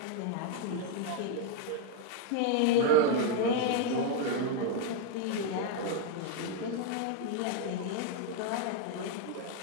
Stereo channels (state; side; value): different; both; correlation 0.00